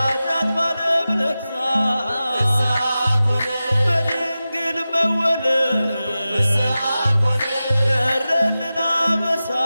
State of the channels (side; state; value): both; inverted; correlation -0.94